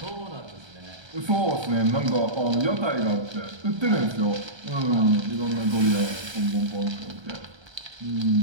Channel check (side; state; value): left; late; 1.3 ms